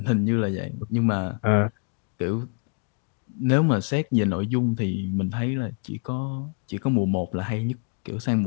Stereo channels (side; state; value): right; quieter; 37.7 dB